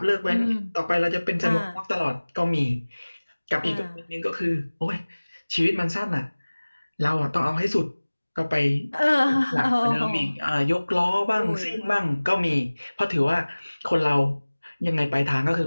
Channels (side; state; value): both; inverted; correlation -1.00